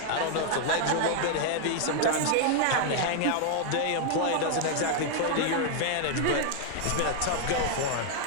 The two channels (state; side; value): different; both; correlation 0.00